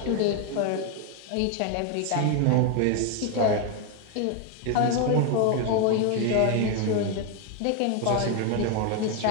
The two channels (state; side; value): different; both; correlation 0.01